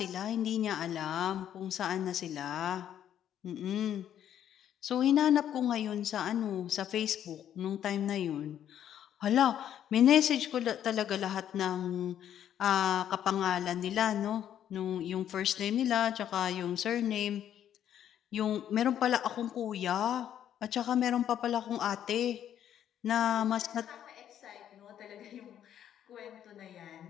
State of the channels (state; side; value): quieter; right; 10.3 dB